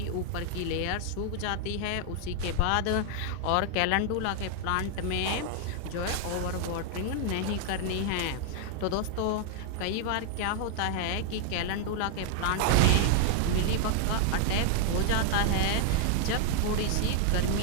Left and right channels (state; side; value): different; both; correlation 0.00